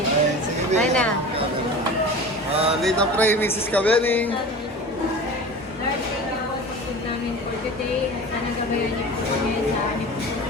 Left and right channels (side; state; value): both; normal; correlation 0.35